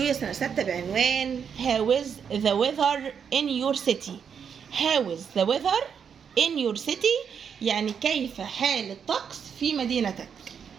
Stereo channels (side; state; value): left; quieter; 7.2 dB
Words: يا سنة 6 بعنوان How is the weather in your city. How is the weather in your city يعني كيف حال الطقس في مدينتك.